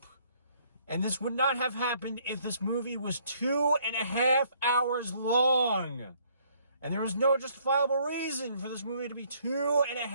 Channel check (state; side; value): inverted; both; correlation -0.65